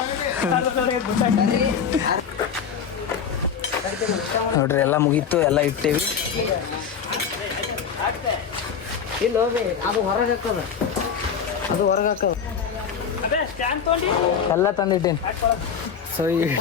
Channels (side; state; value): right; quieter; 7.0 dB